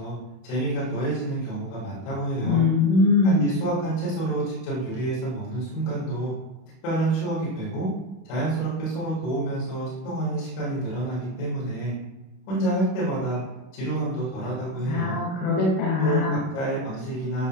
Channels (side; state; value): right; late; 31 ms